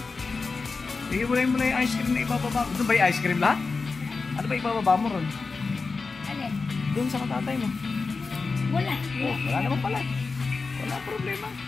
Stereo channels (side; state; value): right; quieter; 4.3 dB